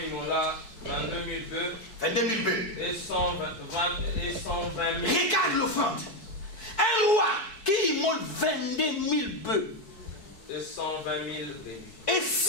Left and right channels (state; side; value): late; right; 4.6 ms